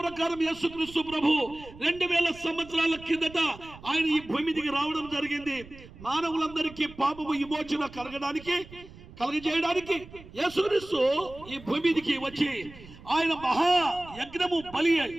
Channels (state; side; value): noise; right; rumble, 19 dB below the sound